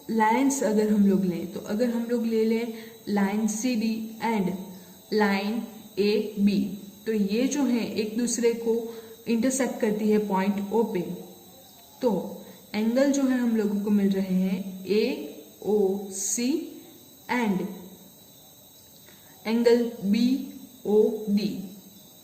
लाइन्स अगर हम लोग लें, तो अगर हम लोग ले लें line CD and line AB, तो ये जो है एक दूसरे को इंटरसेक्ट करती है पॉइंट O पे। तो एंगल जो है हम लोगों को मिल रहे हैं AOC एंड एंगल BOD।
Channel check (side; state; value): both; identical; correlation 1.00